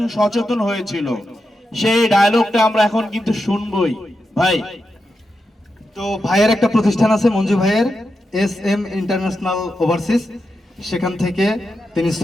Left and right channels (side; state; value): both; normal; correlation 0.88